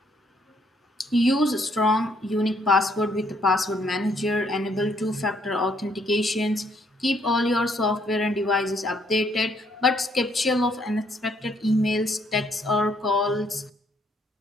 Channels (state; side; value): normal; both; correlation 0.69